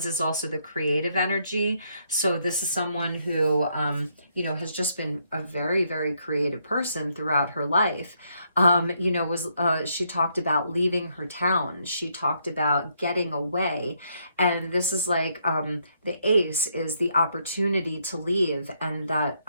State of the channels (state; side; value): inverted; both; correlation -0.74